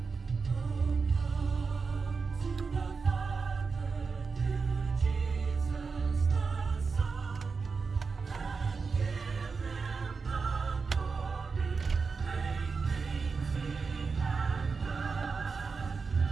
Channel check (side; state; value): left; quieter; 4.8 dB